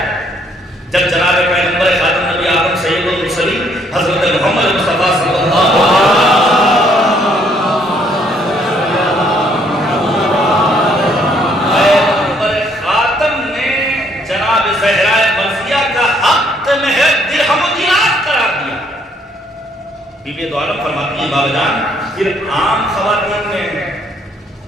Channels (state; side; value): normal; both; correlation 0.67